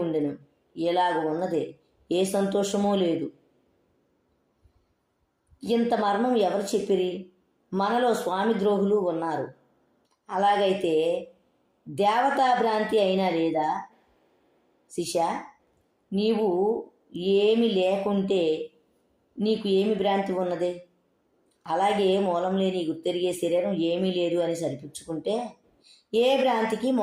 ఉండెను. ఎలాగ ఉన్నదే, ఏ సంతోషమూ లేదు. ఇంత మర్మం ఎవరు చెప్పిరి? మనలో స్వామి ద్రోహులు ఉన్నారు. అలాగైతే దేవతా భ్రాంతి అయినా లేదా? శిష్య, నీవు ఏమి లేకుంటే నీకు ఏమి భ్రాంతి ఉన్నది? అలాగే మూలం లేని గుర్తెరిగే శరీరం ఏమీ లేదు అని సరిపుచ్చుకుంటే ఏ భ్రాంతికి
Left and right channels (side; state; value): both; identical; correlation 1.00